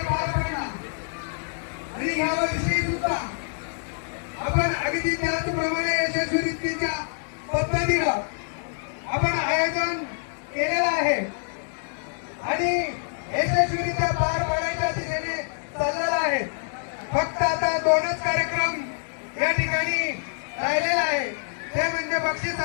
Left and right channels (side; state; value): right; silent; digital silence